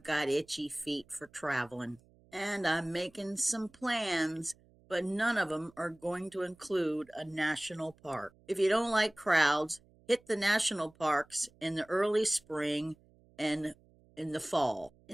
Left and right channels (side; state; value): right; noise; hum, 29 dB below the sound